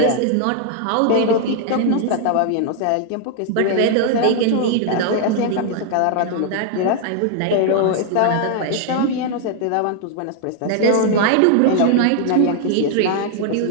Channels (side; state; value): both; different; correlation 0.00